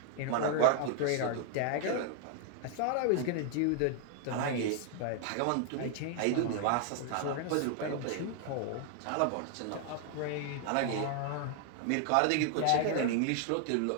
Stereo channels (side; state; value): both; different; correlation 0.00